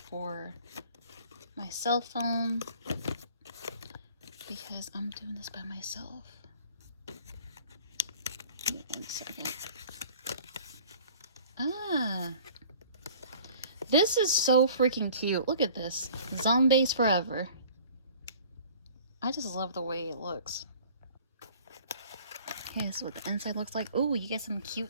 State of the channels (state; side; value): inverted; both; correlation -0.49